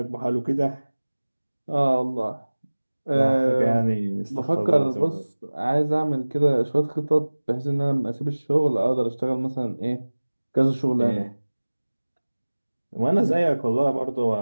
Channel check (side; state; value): both; inverted; correlation -1.00